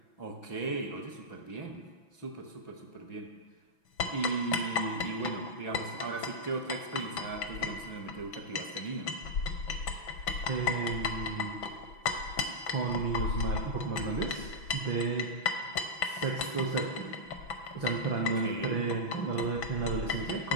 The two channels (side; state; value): right; late; 6.0 ms